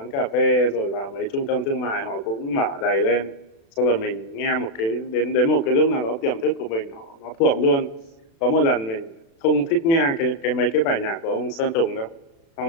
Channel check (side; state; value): right; late; 36 ms